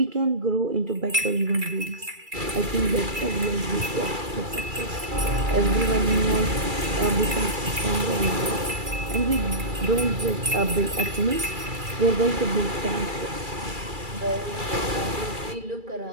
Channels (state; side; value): late; left; 2.3 ms